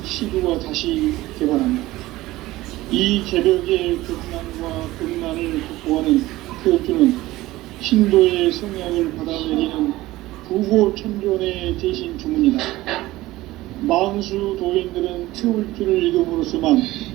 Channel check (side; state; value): left; quieter; 17.6 dB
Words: 시구가 다시 개발합니다. 이 개벽의 극난과 극난을 극복하는 태울주는 신도의 성약을 받아내리는 부고천존의 대신 주문이다. 망수 도인들은 태울주를 이름으로서만